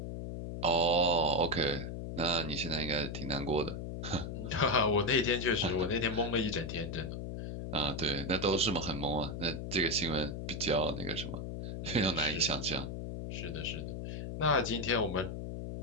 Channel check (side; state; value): left; noise; hum, 6 dB below the sound